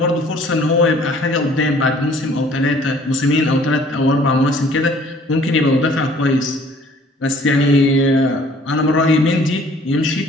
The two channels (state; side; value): normal; both; correlation 0.55